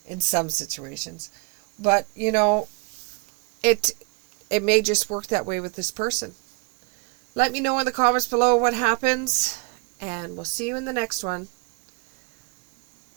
in some situations. But, you know, it may just work that way with this person. Let me know in the comments below what happens, and we'll see you in the next one.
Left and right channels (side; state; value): left; quieter; 31.7 dB